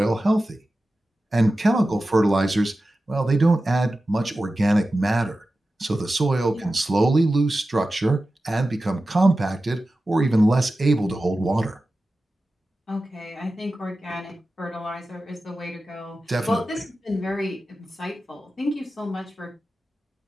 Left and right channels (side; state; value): both; normal; correlation 0.94